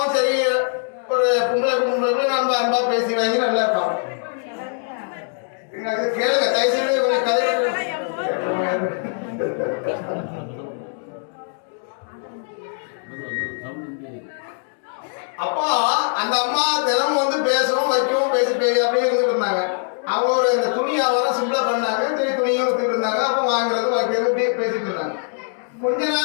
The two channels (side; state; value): right; silent; 64 dB below the other